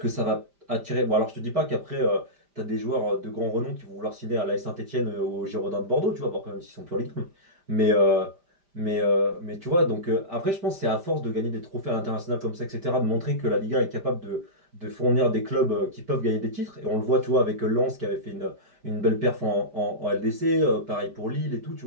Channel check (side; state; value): left; late; 5.0 ms